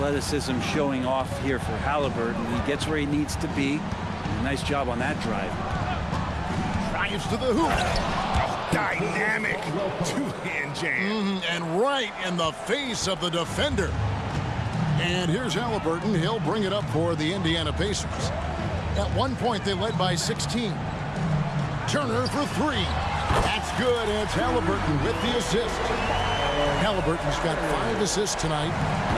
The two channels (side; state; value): both; identical; correlation 1.00